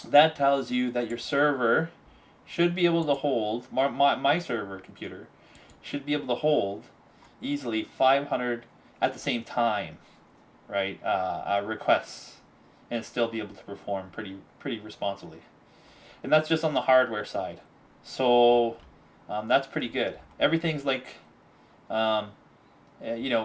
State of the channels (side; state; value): both; identical; correlation 1.00